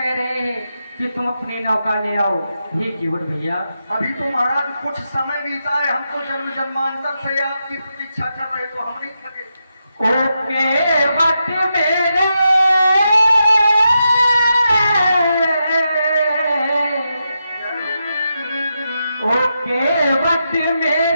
रहे हैं कि तुम अपनी नौका ले आओ। हे केवल भैया अभी तो महाराज कुछ समय बीता है, हमको जन्म जन्मांतर से आपकी प्रतीक्षा कर रहे तो हम नहीं थके। ओके वक्त मेरे ओके वक्त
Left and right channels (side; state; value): both; inverted; correlation -0.86